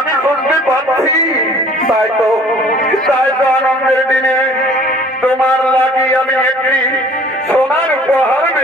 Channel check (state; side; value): normal; both; correlation 0.52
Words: শুনতে পাচ্ছি। তাই তো আনন্দের দিনে তোমার লাগি আমি একটি সোনার উপহার